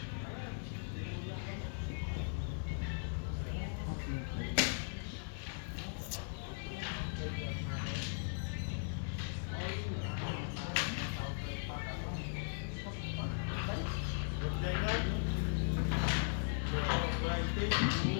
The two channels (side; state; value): right; silent; digital silence